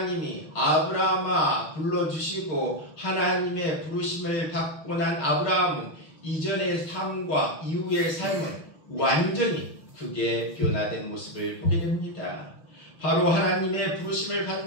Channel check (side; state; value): right; late; 6.2 ms